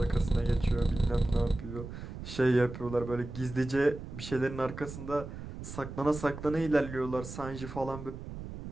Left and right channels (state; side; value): noise; right; rumble, 10 dB below the sound